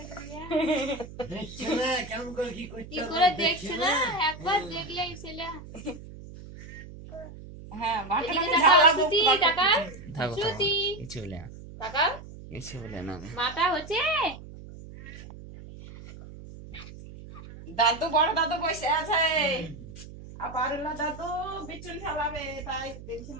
করে দেখছে না একবার দেখলেই ছেলে। হ্যাঁ মাথা হচ্ছে দাদু বড় দাদু বসে আছে আবার দাদু বিচুন খেলাবে তাই দেখছি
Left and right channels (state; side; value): noise; right; hum, 15 dB below the sound